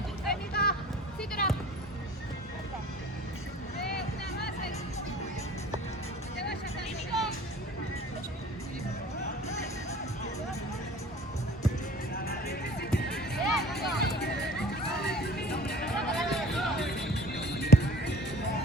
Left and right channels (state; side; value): normal; both; correlation 0.47